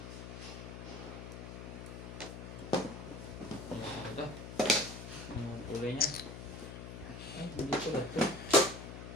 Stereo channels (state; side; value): noise; left; hum, 9 dB below the sound